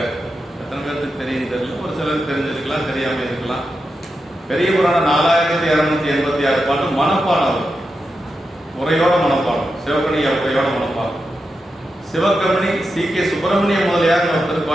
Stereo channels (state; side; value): normal; both; correlation 0.88